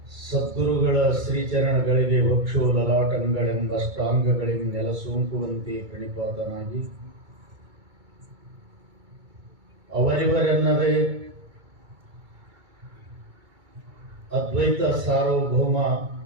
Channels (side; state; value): left; late; 2.3 ms